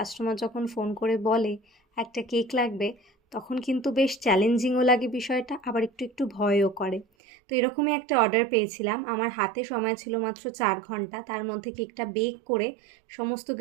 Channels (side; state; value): left; drops out; at 7.1 s